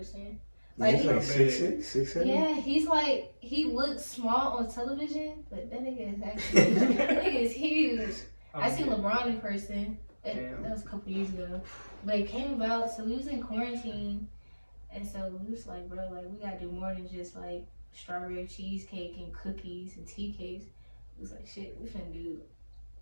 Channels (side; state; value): both; inverted; correlation -1.00